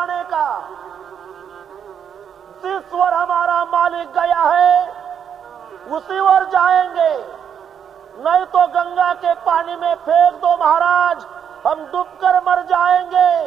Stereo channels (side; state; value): left; quieter; 8.1 dB